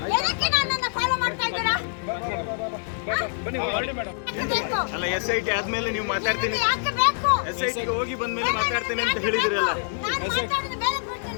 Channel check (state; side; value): silent; right; 60 dB below the other